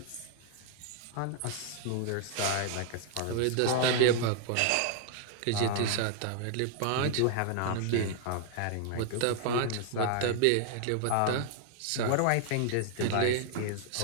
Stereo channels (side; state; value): both; different; correlation 0.00